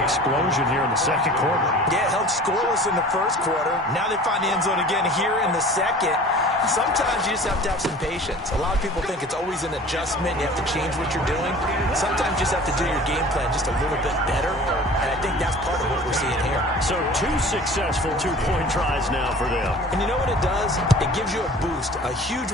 explosion here in the second quarter. Yeah, held scoreless in the first quarter. Now they find the end zone again here in the second. Sometimes you just have to have some patience. A lot of people think it's always an adjustment. You have to change what you're doing. Sometimes you just have to do your game plan just a little bit better. And I think that's part of what we're seeing here. So 2 successful two-point tries now for them. And you know what it does? It gives you a boost, a huge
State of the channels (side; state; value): both; normal; correlation 0.43